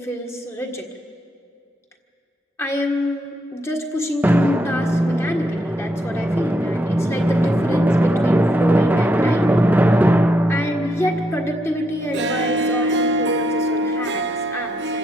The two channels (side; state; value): both; normal; correlation 0.77